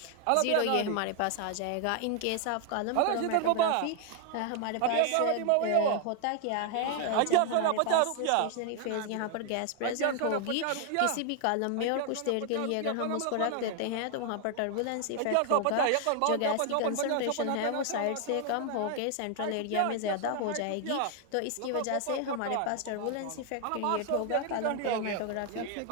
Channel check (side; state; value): both; different; correlation 0.00